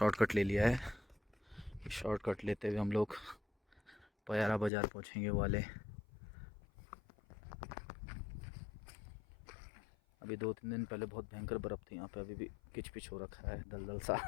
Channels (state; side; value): drops out; right; at 4.7 s